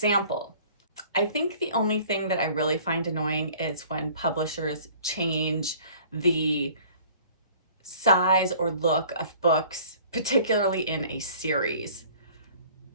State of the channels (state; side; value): inverted; both; correlation -0.50